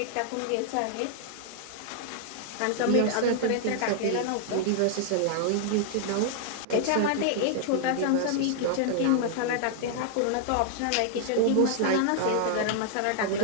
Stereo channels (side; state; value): both; different; correlation -0.01